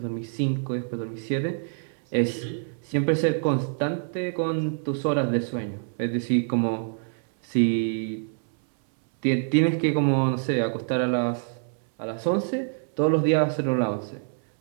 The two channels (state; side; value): silent; left; 61 dB below the other